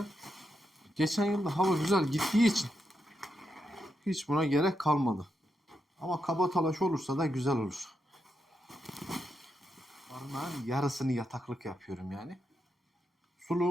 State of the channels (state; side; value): normal; both; correlation 0.84